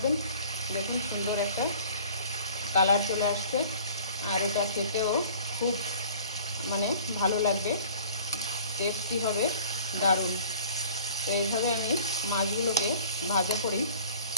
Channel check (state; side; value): inverted; both; correlation -0.49